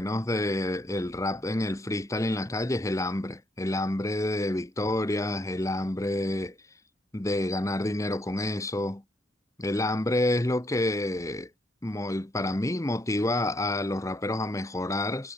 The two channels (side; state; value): both; normal; correlation 0.73